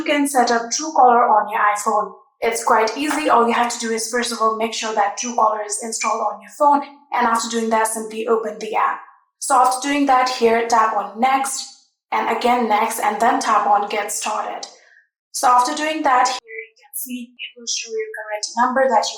can set up Truecaller on your iPhone. It's quite easy. All you have to do is first of all make sure that Truecaller is installed on your phone, and after doing that simply open the app. So after doing that, here tap on next and again next and then tap on get started. So after doing that, here you can see it will show your correct number that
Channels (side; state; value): both; identical; correlation 1.00